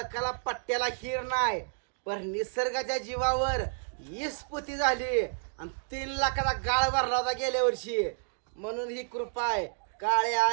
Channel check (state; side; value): silent; left; digital silence